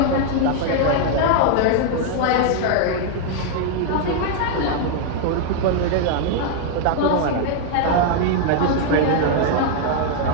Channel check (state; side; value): different; both; correlation 0.00